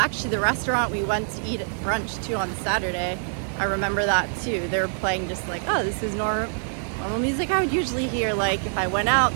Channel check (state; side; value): silent; left; digital silence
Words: the restaurant we went to eat at brunch too on Saturday, I remember that too. They were playing just like, oh, this is normal music I would usually hear like if I went out